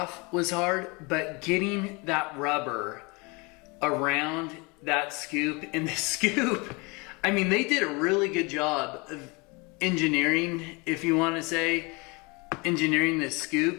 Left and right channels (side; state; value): right; quieter; 28.0 dB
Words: was hard, but getting that rubber around that scoop, and the scoop, I mean, they did a really good job of engineering, if you want to say, engineering this